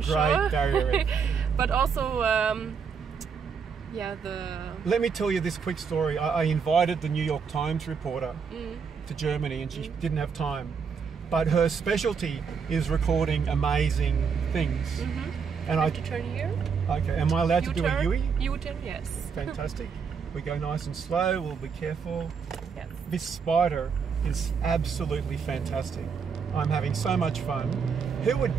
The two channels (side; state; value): left; quieter; 6.1 dB